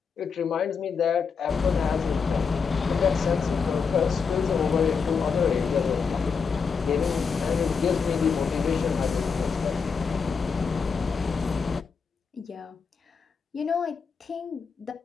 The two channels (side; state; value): right; quieter; 5.6 dB